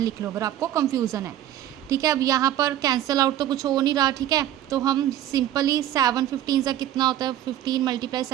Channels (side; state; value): left; quieter; 12.2 dB